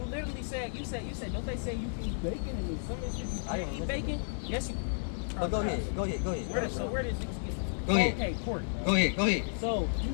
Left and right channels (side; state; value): right; silent; digital silence